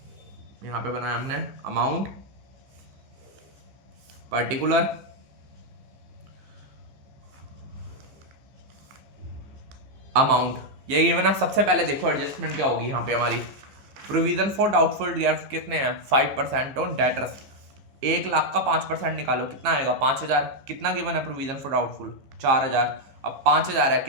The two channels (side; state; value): left; late; 15 ms